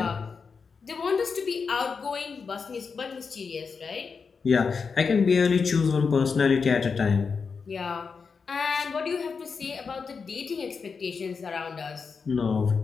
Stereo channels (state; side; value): quieter; right; 5.3 dB